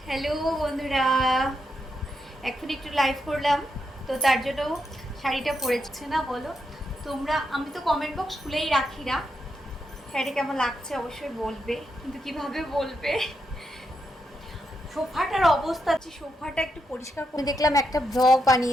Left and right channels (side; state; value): both; normal; correlation 0.83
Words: হ্যালো বন্ধুরা, এখন একটু লাইভ করলাম, তো তার জন্য শাড়িটা পরেছে না বলো তোমরা। আমি তো কমেন্ট বক্স খুলেই রাখি না। শাড়িটা কেমন লাগছে অবশ্যই বলবে, কিন্তু কিভাবে বলবে। সোফাটার অবস্থা আছে, সোফাটা একটু পরিষ্কার করে দেখলাম একটা ব্লগ